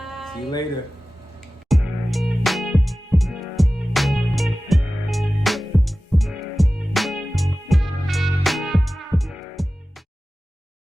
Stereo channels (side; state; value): both; normal; correlation 0.96